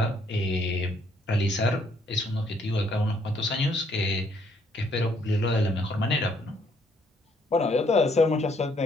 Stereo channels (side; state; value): both; normal; correlation 0.69